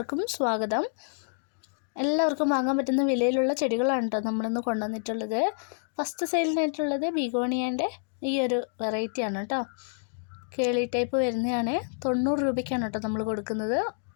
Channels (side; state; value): right; silent; digital silence